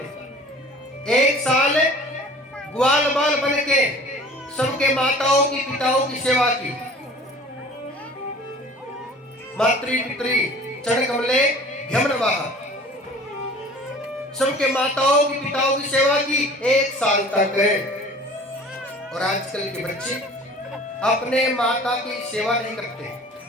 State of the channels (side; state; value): both; normal; correlation 0.46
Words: 1 साल ग्वाल बाल बन के सबके माताओं की पिताओं की सेवा की। मातृ पितृ चरण कमले यमनवाह, सबके माताओं की पिताओं की सेवा की 1 साल तक। और आजकल के बच्चे अपने माता की सेवा नहीं करते,